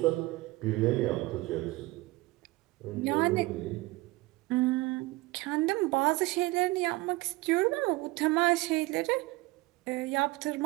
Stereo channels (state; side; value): quieter; left; 20.9 dB